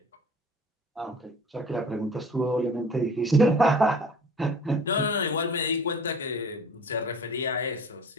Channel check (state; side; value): normal; both; correlation 0.45